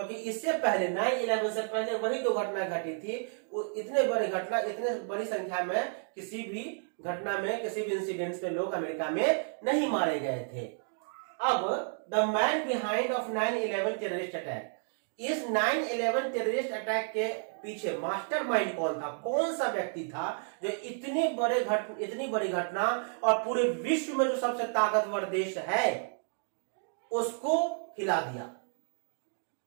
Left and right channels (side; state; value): left; silent; 57 dB below the other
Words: इससे पहले 9/11 से पहले वही 2 घटना घटी थी। इतने बड़ी संख्या में किसी भी घटना में, किसी भी इंसिडेंट में लोग अमेरिका में नहीं मारे गए थे। अब the man behind of 9/11 terrorist attack, इस 9/11 टेररिस्ट अटैक के पीछे मास्टरमाइंड कौन था, कौन सा व्यक्ति था जो इतनी बड़ी घटना और पूरे विश्व में जो सबसे ताकतवर देश है उसको हिला दिया,